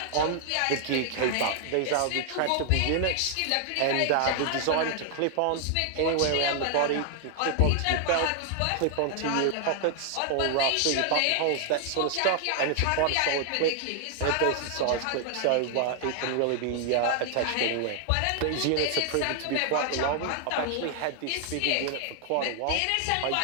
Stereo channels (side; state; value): both; different; correlation 0.00